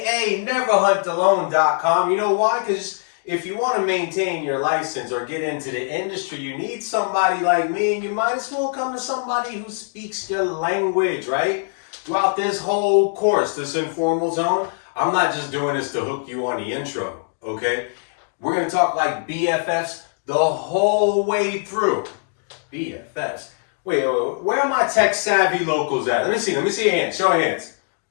neverhuntalone.com. You know why? Because if you want to maintain your license or get into the industry, you need somebody like me, and you might as well come to somebody who speaks your language, right? Throughout this whole course, this informal zone, I'm not just doing this to hook you on the intro, okay? We're going to talk like BFFs the whole way through. BFFs. Wait, where are my tech savvy locals at? Let me see your hands. Show your hands.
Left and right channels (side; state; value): right; silent; digital silence